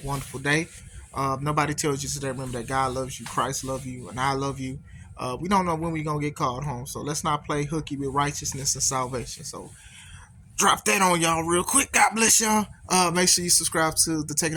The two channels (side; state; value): both; identical; correlation 1.00